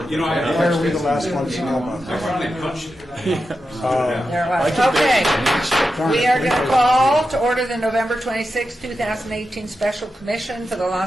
are we the last ones to know about I that? finally punched it. There it was. Okay, we are going to call to order the November 26, 2018 Special Commission for the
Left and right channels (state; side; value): normal; both; correlation 0.89